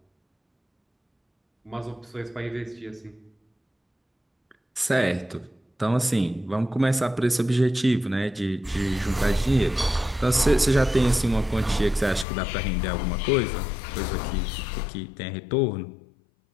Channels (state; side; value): drops out; right; at 12.2 s